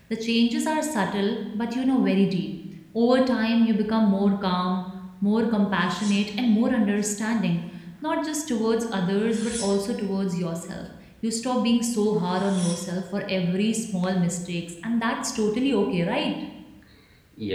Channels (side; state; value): both; identical; correlation 1.00